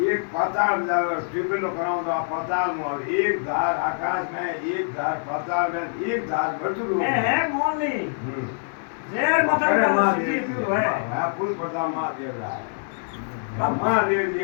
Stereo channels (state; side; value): silent; right; digital silence